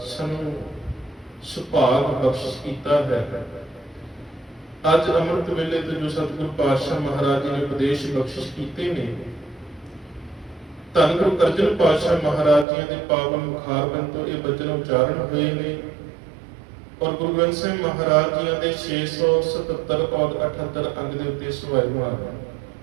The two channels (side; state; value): left; drops out; at 12.7 s